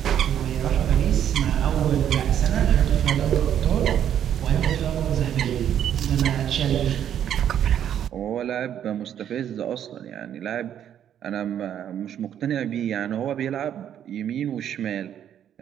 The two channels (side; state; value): left; quieter; 9.9 dB